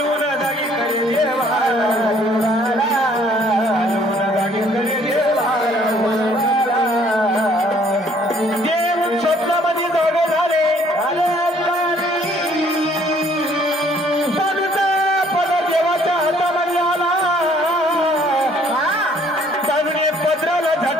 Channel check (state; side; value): normal; both; correlation 0.61